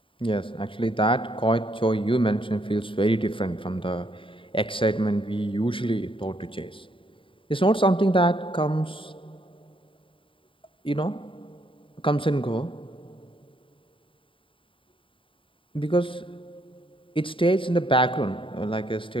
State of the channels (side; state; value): right; late; 0.25 ms